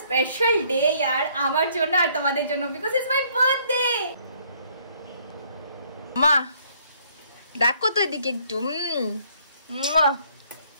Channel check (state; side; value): inverted; both; correlation -0.64